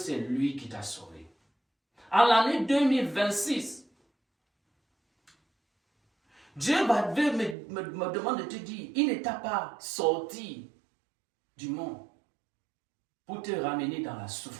lui qui t'a sauvé. En l'année 2026, Dieu me demande de te dire, il ne t'a pas sorti du monde pour te ramener dans la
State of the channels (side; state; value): left; drops out; at 7.6 s